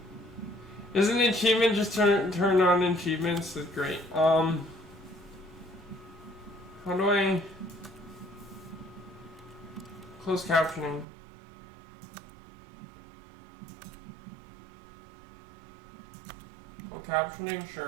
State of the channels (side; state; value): left; drops out; at 11.1 s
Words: Isn't the achievement just turn on achievements? That's great. How do I close captioning? Full captioning?